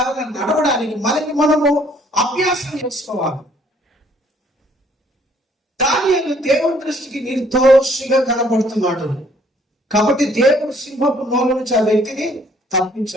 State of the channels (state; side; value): normal; both; correlation 0.62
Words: నడవడానికి మనకి మనము అభ్యాసం చేసుకోవాలి. దానియేలు దేవుని దృష్టికి నిర్దోషిగా కనబడుతున్నాడు. కాబట్టి దేవుడు సింహపు నోల నుంచి ఆ వ్యక్తిని